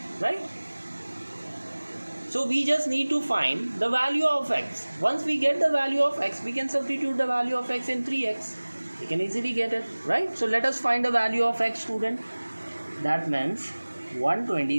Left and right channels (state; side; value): inverted; both; correlation -1.00